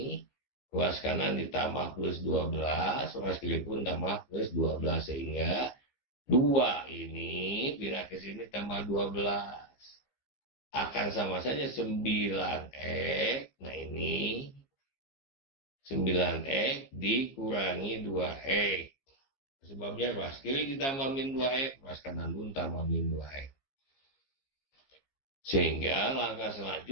ruas kanan ditambah plus 12, ruas kiri pun tambah plus 12, sehingga 2 ini pindah ke sini tambah 12. Akan sama saja 9X, nah ini 9X dikurangi 2X. Sebabnya ruas kiri ditambah min 2X, ruas kanan pun tambah min 2X. Sehingga langkah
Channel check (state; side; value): late; right; 15 ms